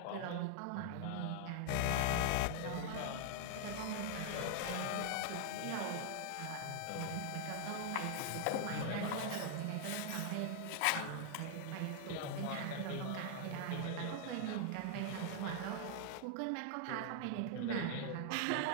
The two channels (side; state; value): both; different; correlation 0.00